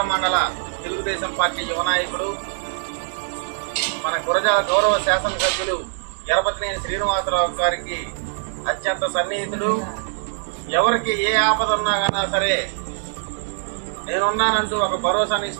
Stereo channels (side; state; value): left; silent; digital silence